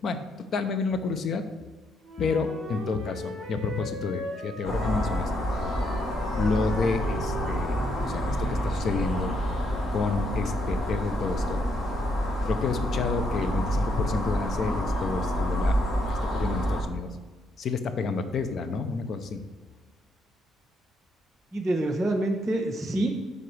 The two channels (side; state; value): both; normal; correlation 0.75